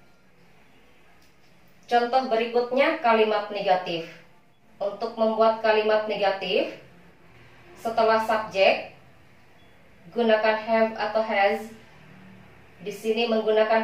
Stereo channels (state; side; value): identical; both; correlation 1.00